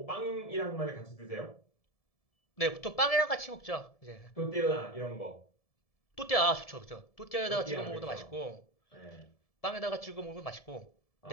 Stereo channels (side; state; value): right; late; 1.7 ms